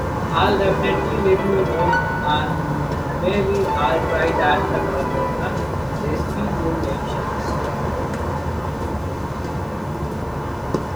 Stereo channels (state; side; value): noise; left; hiss, 29 dB below the sound